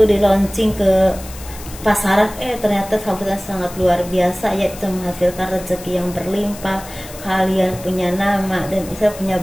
di launching ke pasaran, ternyata sambutan sangat luar biasa, yaitu menghasilkan rezeki yang berlimpah. Kalian punya nama dan bisa punya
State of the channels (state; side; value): noise; left; hiss, 16 dB below the sound